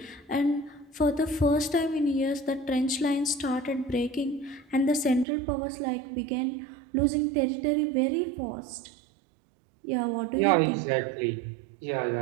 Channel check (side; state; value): left; drops out; at 5.2 s